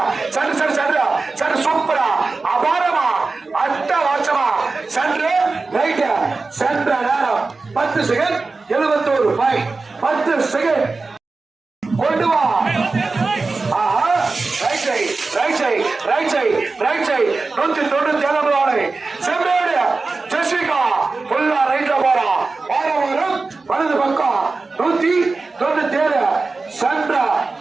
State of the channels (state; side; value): quieter; left; 3.8 dB